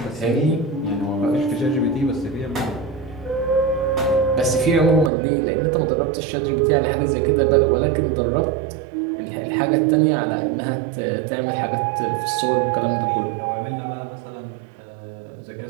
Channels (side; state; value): left; drops out; at 5.1 s